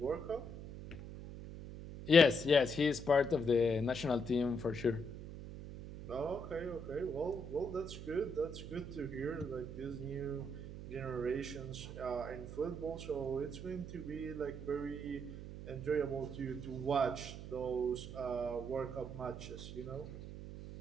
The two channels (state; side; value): noise; right; hum, 10 dB below the sound